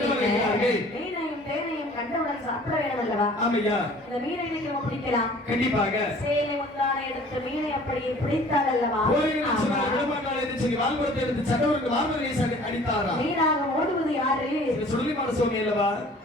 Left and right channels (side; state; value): both; normal; correlation 0.50